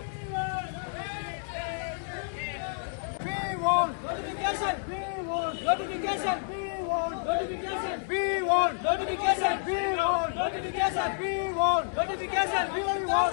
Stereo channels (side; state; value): right; silent; digital silence